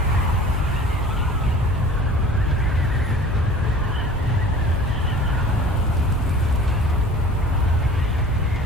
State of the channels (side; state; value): both; normal; correlation 0.45